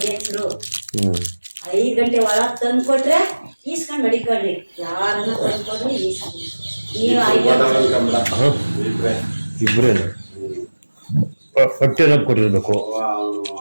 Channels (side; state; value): both; inverted; correlation -1.00